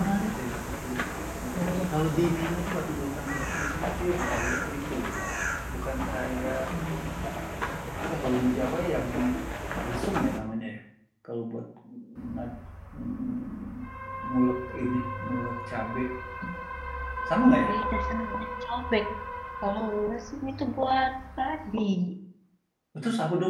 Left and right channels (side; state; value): both; identical; correlation 1.00